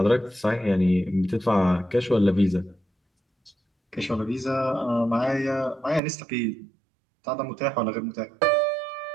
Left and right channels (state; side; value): drops out; left; at 6.0 s